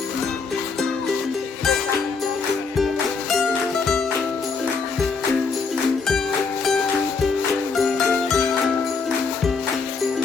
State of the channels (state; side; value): quieter; right; 4.8 dB